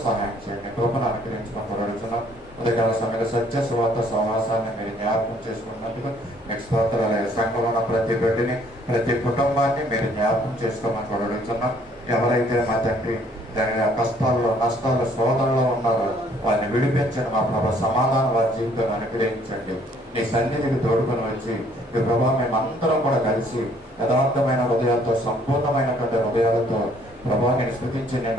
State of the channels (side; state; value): both; normal; correlation 0.62